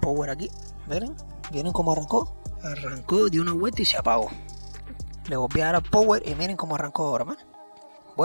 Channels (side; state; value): both; inverted; correlation -1.00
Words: aquí. Miren cómo arrancó de una vuelta y se apagó. Le volví a dar al power y miren cómo arrancó ahora, man.